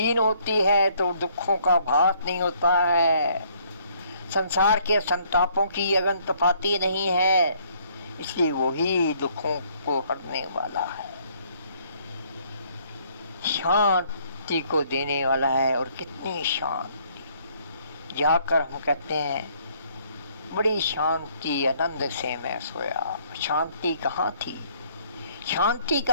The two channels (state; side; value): inverted; both; correlation -0.64